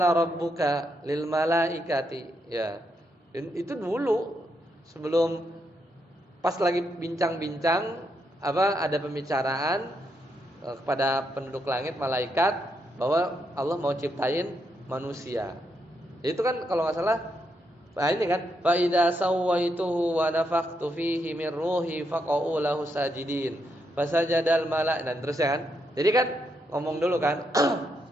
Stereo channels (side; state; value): both; normal; correlation 0.79